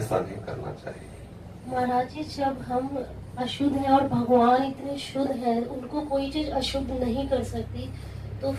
नहीं करना चाहिए। महाराज जी, जब हम अशुद्ध हैं और भगवान इतने शुद्ध हैं, उनको कोई चीज अशुद्ध नहीं कर सकती, तो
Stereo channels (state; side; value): identical; both; correlation 1.00